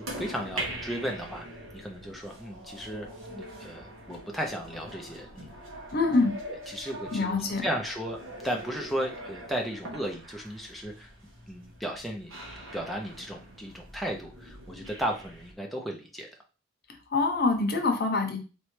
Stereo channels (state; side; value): normal; both; correlation 0.45